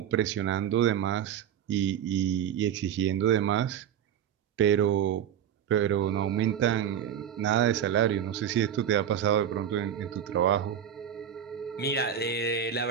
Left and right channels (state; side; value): quieter; left; 9.3 dB